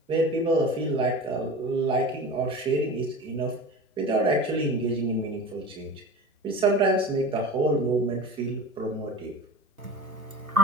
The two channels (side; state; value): both; normal; correlation 0.34